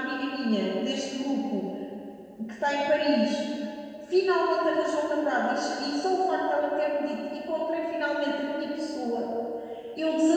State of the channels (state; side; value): identical; both; correlation 1.00